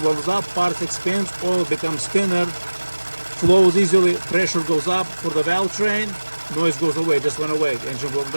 warms up, parts expands, oil becomes thinner, flows easily, pressure goes up for the valve train, noise goes away, just went away, engine warmed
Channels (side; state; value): both; inverted; correlation -1.00